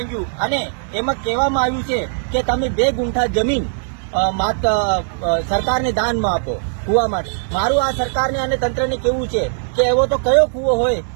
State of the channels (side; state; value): left; silent; digital silence